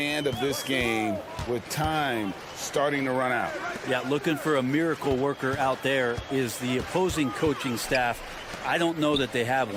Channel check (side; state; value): both; identical; correlation 1.00